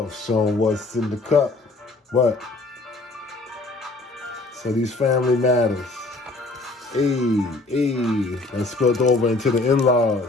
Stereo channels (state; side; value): quieter; right; 3.2 dB